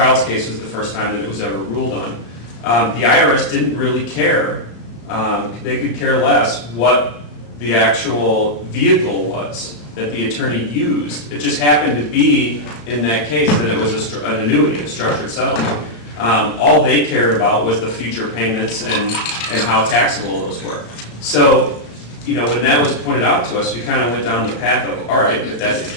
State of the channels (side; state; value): right; late; 34 ms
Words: case was the first time that it was ever ruled on. The IRS didn't really care. They could care less what the actual vehicle was that the attorney used. It just happened to be in that case that it was an annuity, a structured settlement. All they cared about was the future payments and how taxable those were. So, when that was pointed out to us, we kind of went down the path of, all right, if that's the